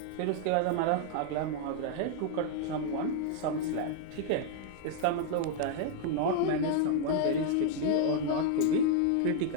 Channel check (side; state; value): both; different; correlation 0.00